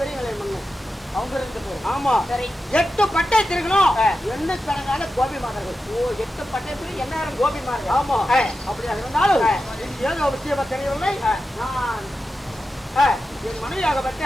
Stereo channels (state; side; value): normal; both; correlation 0.91